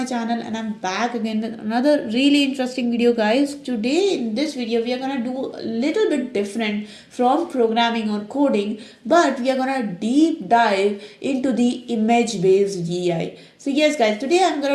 channel and I'm back again with another really interesting video guys. Today in this video we are gonna do a little bit different from programming or coding, but we are gonna deep dive into the image based AI. So yes guys, today I'm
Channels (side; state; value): both; identical; correlation 1.00